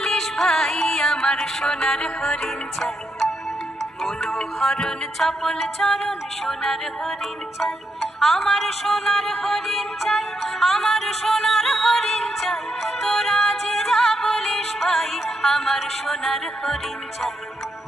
ভাই আমার সোনার হরিণ চাই, মনোহরণ চপল চরণ সোনার হরিণ চাই, আমার সোনার হরিণ চাই, আমার সোনার হরিণ চাই, তোরা যে যা বলিস ভাই আমার সোনার হরিণ চাই।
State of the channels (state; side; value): normal; both; correlation 0.81